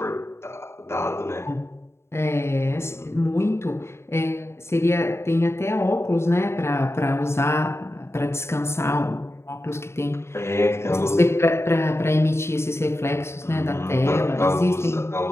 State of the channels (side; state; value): right; late; 0.13 ms